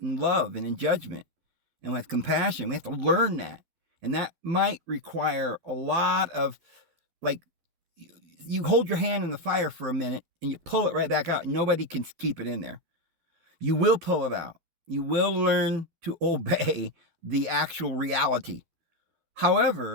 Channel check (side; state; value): left; late; 12 ms